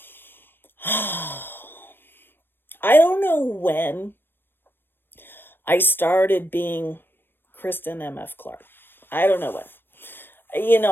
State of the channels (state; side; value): late; right; 0.097 ms